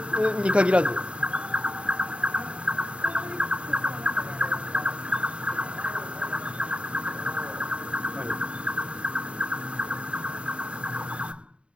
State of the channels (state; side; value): late; left; 0.058 ms